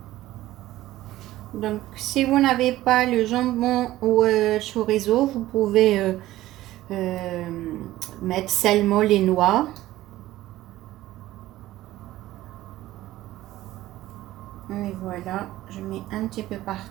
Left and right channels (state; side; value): quieter; left; 15.5 dB